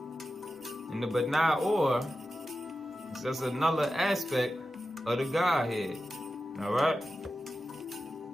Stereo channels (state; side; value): normal; both; correlation 0.92